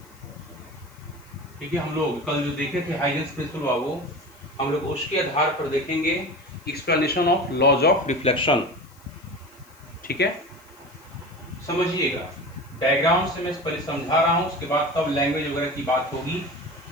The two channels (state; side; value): noise; left; hiss, 27 dB below the sound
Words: ठीक है, हम लोग कल जो देखे थे हाइजेंस प्रिंसिपल बाबू, हम लोग उसके आधार पर देखेंगे explanation of laws of reflection. ठीक है, समझिएगा, डायग्राम से मैं पहले समझा रहा हूं, उसके बाद तब लैंग्वेज वगैरह की बात होगी।